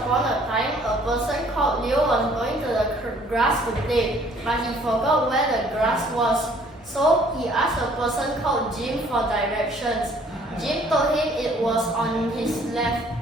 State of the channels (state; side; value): normal; both; correlation 0.58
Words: a time, a person called Leo was going to the grass to play, but he forgot where the grass was. So he asked a person called Jim for directions. Jim told him it was on his left.